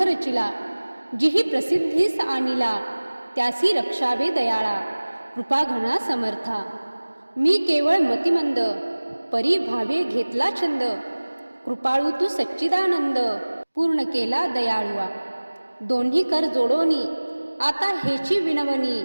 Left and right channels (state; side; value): inverted; both; correlation -1.00